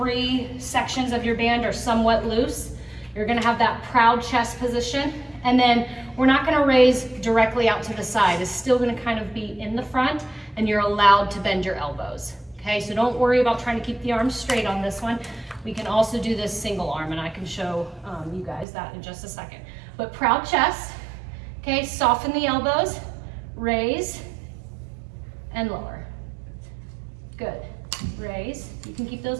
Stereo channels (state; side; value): drops out; left; at 18.7 s